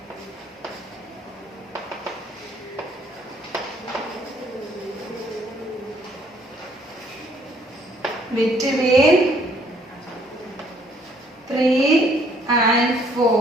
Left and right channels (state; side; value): normal; both; correlation 0.64